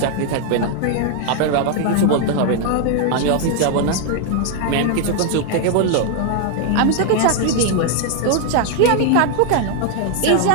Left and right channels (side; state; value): both; different; correlation 0.00